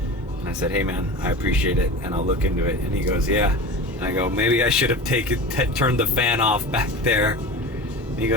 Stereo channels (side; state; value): both; normal; correlation 0.31